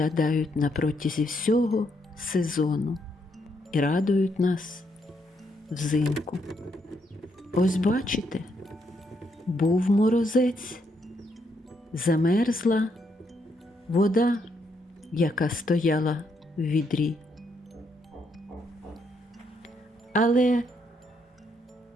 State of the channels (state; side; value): normal; both; correlation 0.76